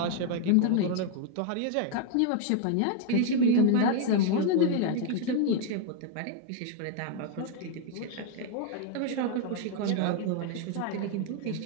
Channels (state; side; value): different; both; correlation 0.00